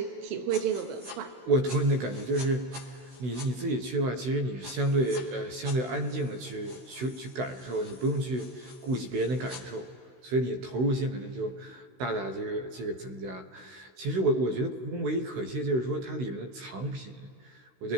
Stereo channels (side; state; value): left; late; 16 ms